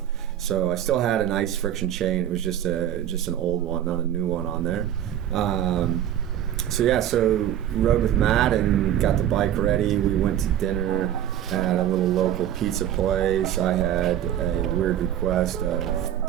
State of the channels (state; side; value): quieter; left; 11.1 dB